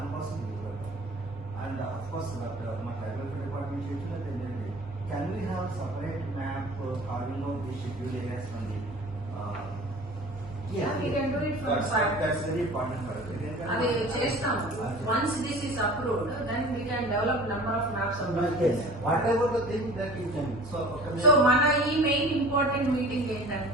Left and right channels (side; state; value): both; normal; correlation 0.43